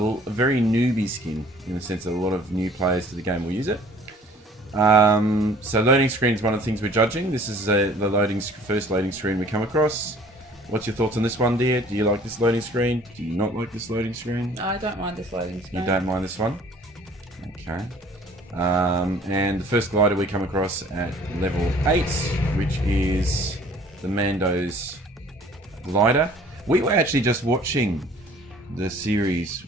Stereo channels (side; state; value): both; normal; correlation 0.52